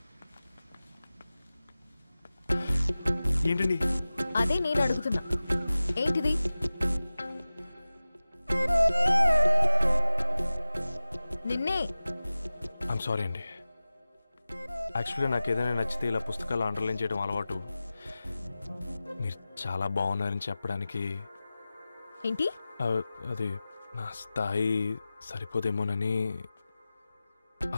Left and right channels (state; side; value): inverted; both; correlation -0.96